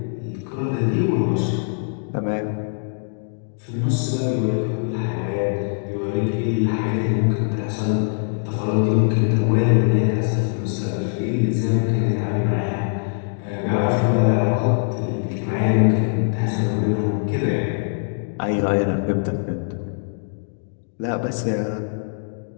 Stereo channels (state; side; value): silent; right; digital silence